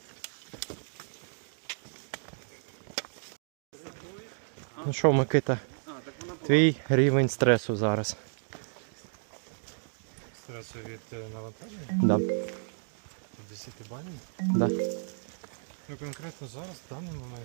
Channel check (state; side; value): silent; left; 56 dB below the other